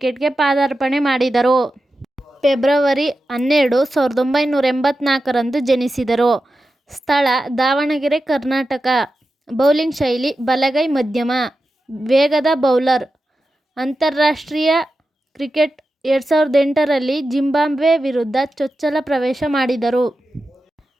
ಪಾದಾರ್ಪಣೆ ಮಾಡಿದರು. ಫೆಬ್ರವರಿ 12, 1984ರಂದು ಜನಿಸಿದರು. ಸ್ಥಳ ದಾವಣಗೆರೆ, ಕರ್ನಾಟಕ. ಬೌಲಿಂಗ್ ಶೈಲಿ ಬಲಗೈ ಮಧ್ಯಮ ವೇಗದ ಬೌಲರ್. ಅಂತಾರಾಷ್ಟ್ರೀಯ ಕ್ರಿಕೆಟ್ 2008ರಲ್ಲಿ ಜಿಂಬಾಬ್ವೆ ವಿರುದ್ಧ ಚೊಚ್ಚಲ ಪ್ರವೇಶ ಮಾಡಿದರು.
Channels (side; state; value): both; normal; correlation 0.91